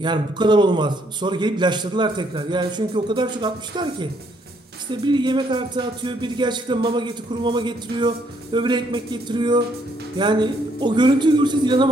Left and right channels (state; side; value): normal; both; correlation 0.69